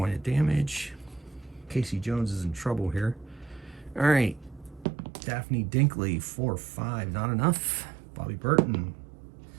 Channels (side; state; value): left; drops out; at 4.9 s